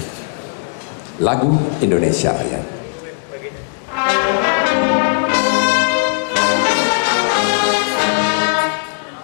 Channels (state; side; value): silent; right; digital silence